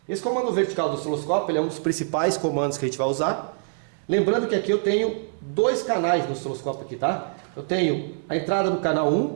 Esse comando vertical do osciloscópio ele é um dos principais comandos que a gente vai usar. Lembrando que aqui eu tenho dois canais no osciloscópio aqui, tá? Eu tenho a entrada do canal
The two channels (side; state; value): left; silent; digital silence